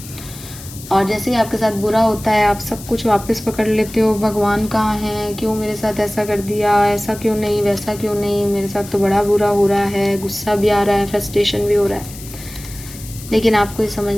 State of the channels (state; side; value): noise; left; hiss, 15 dB below the sound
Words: और जैसे ही आपके साथ बुरा होता है आप सब कुछ वापस पकड़ लेते हो। भगवान कहाँ हैं, क्यों मेरे साथ ऐसा कर दिया, ऐसा क्यों नहीं, वैसा क्यों नहीं, मेरे साथ तो बड़ा बुरा हो रहा है, गुस्सा भी आ रहा है, फ्रस्ट्रेशन भी हो रहा है। लेकिन आपको ये